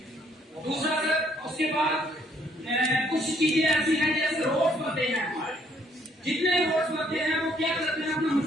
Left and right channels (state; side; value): normal; both; correlation 0.66